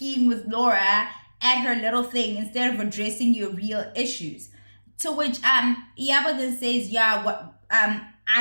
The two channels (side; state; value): both; inverted; correlation -1.00